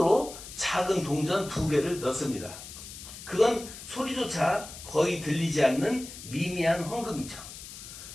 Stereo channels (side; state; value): left; noise; hiss, 13 dB below the sound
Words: 작은 동전 2개를 넣습니다. 그건 소리조차 거의 들리지 않는 미미한 헌금이죠.